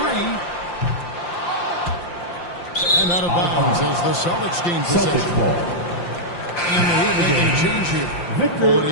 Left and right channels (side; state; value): right; late; 5.7 ms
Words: 3. And out of bounds as the Celtics gain possession. And the Heat making a change here.